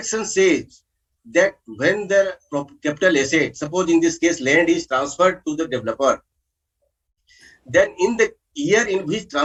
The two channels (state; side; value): identical; both; correlation 1.00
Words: says that when the capital asset, suppose in this case land is transferred to the developer, then in the year in which